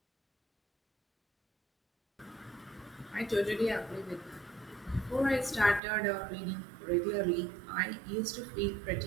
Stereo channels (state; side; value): drops out; left; at 5.8 s